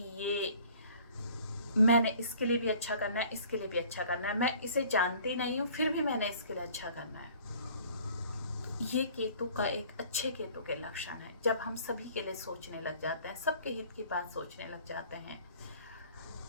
ये मैंने इसके लिए भी अच्छा करना है, इसके लिए भी अच्छा करना है, मैं इसे जानती नहीं हूँ फिर भी मैंने इसके लिए अच्छा करना है, ये केतु का एक अच्छे केतु के लक्षण है। जब हम सभी के लिए सोचने लग जाते हैं, सबके हित की बात सोचने लग जाते हैं।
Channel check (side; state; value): both; inverted; correlation -0.52